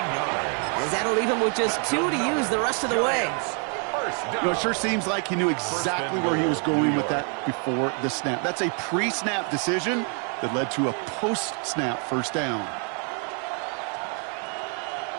that'll leave him with just 2 to use the rest of the way. You know, it sure seems like he knew exactly where he was going with that before the snap. That's a pre-snap decision that led to a post-snap first down.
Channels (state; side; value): quieter; left; 39.7 dB